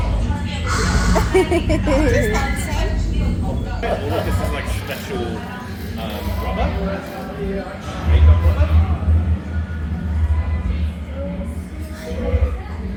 This is like special rubber. Makeup rubber.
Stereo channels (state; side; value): identical; both; correlation 1.00